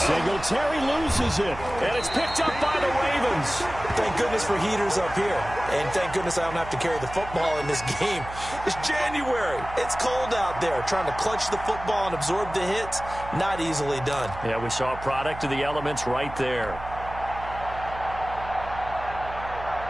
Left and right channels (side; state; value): right; noise; hum, 12 dB below the sound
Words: loses it, and it's picked up by the Ravens. Thank goodness for heaters up here, and thank goodness I don't have to carry the football in this game. It's January. It's cold out there. Trying to clutch the football and absorb the hits, not easily done. Yeah, we saw a product of the elements right there.